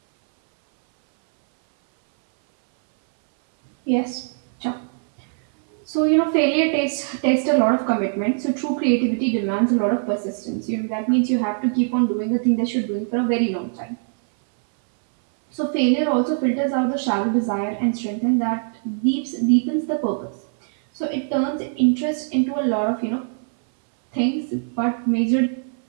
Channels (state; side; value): silent; left; 60 dB below the other